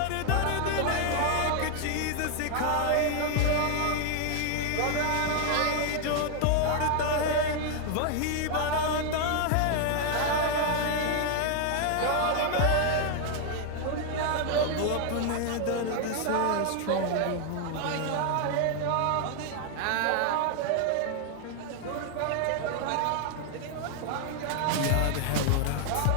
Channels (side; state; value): both; different; correlation 0.00